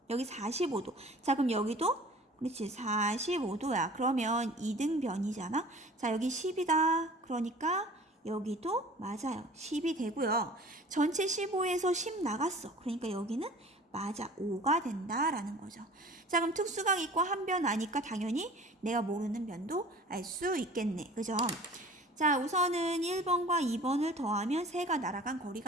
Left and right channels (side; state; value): both; normal; correlation 0.45